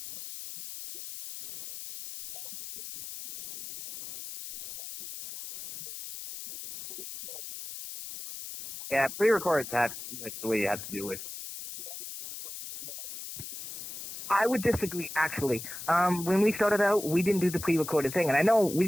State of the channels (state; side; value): noise; left; hiss, 10 dB below the sound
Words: thingies, you know, doing a live show by yourself, yeah, not such a good idea. Just pre-recorded. Actually, with one-man shows, pre-recorded shows is the way to go, really. I would disagree, actually. When we started out, we didn't do the pre-recorded thing, and I know